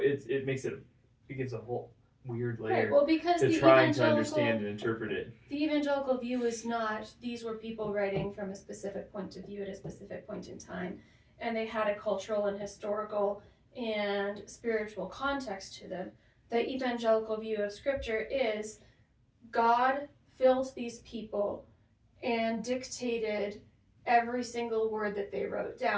gives a whole weird layer because to trying to understand and interpret it. The evangelical view is not these were people writing from a specific point of view at a specific point in time, and they had a cultural and historical and spiritual context to them. The evangelical view of Scripture is God filled these people and dictated every single word that they wrote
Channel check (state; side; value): identical; both; correlation 1.00